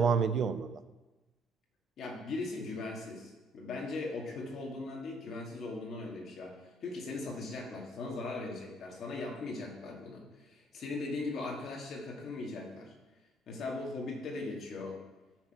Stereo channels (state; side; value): normal; both; correlation 0.63